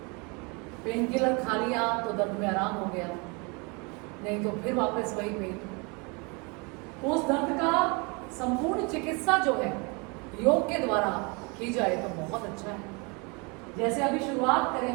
पेन किलर खा लिया तो दर्द में आराम हो गया, नहीं तो फिर वापस वही पेन। उस दर्द का संपूर्ण चिकित्सा जो है योग के द्वारा की जाए तो बहुत अच्छा है। जैसे अभी शुरुआत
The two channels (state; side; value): quieter; left; 30.4 dB